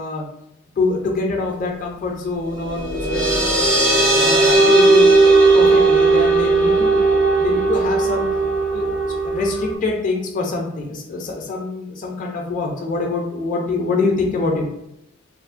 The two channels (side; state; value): both; normal; correlation 0.63